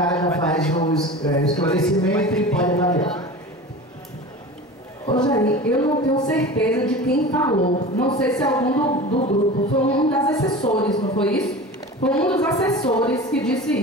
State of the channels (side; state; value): both; normal; correlation 0.34